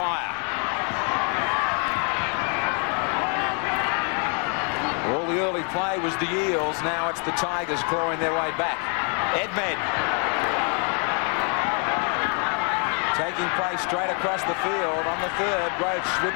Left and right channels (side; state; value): right; quieter; 39.1 dB